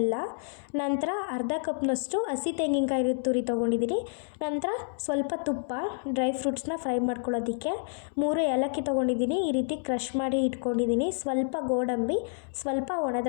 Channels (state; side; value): silent; right; 59 dB below the other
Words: ನಂತರ ಅರ್ಧ ಕಪ್ನಷ್ಟು ಹಸಿ ತೆಂಗಿನಕಾಯಿ ತುರಿ ತೊಗೊಂಡಿದ್ದೀನಿ. ನಂತರ ಸ್ವಲ್ಪ ತುಪ್ಪ, ಡ್ರೈ ಫ್ರೂಟ್ಸ್ನ ಫ್ರೈ ಮಾಡ್ಕೊಳ್ಳೋದಕ್ಕೆ 3 ಏಲಕ್ಕಿ ತೊಗೊಂಡಿದ್ದೀನಿ. ಈ ರೀತಿ ಕ್ರಷ್ ಮಾಡಿ ಇಟ್ಕೊಂಡಿದ್ದೀನಿ. ಸ್ವಲ್ಪ ಗೋಡಂಬಿ, ಸ್ವಲ್ಪ